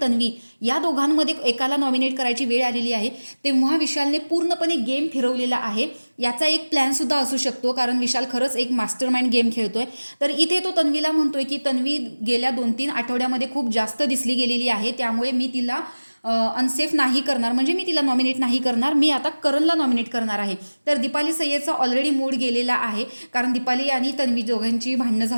तन्वी या दोघांमध्ये एकाला नॉमिनेट करायची वेळ आलेली आहे, तेव्हा विशालने पूर्णपणे गेम फिरवलेला आहे. याचा एक प्लॅनसुद्धा असू शकतो, कारण विशाल खरंच एक मास्टरमाइंड गेम खेळतोय. तर इथे तो तन्वीला म्हणतोय की तन्वी गेल्या 2-3 आठवड्यामध्ये खूप जास्त दिसली गेलेली आहे, त्यामुळे मी तिला अनसेफ नाही करणार, म्हणजे मी तिला नॉमिनेट नाही करणार, मी आता करणला नॉमिनेट करणार आहे. तर दीपाली सय्यदचा ऑलरेडी मूड गेलेला आहे, कारण दीपाली आणि तन्वी दोघांची भांडणं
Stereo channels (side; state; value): both; inverted; correlation -1.00